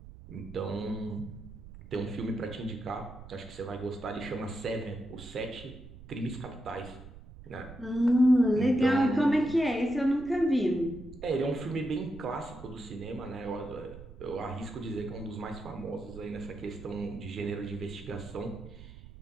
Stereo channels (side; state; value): right; noise; rumble, 16 dB below the sound